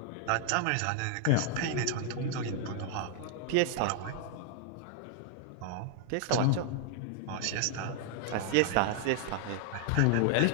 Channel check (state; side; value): different; both; correlation 0.00